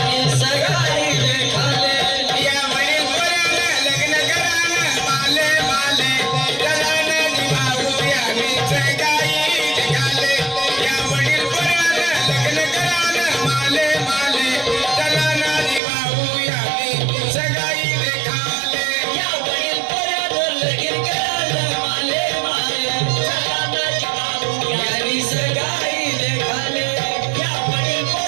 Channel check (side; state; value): left; drops out; at 15.8 s